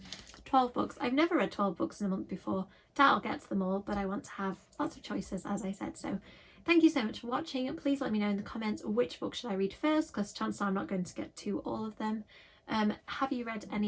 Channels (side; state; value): both; identical; correlation 1.00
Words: 12 books. I've never read 12 books in a month before. Doubt I'll get to them all, but I want to have lots of choices, as I said. So thank you so much for watching. Please let me know in the comments which book should I read first, because chances are I'm not going to get to all of them. Have you read